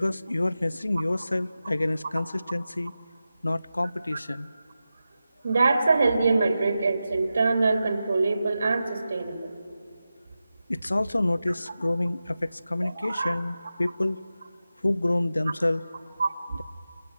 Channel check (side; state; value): both; inverted; correlation -0.92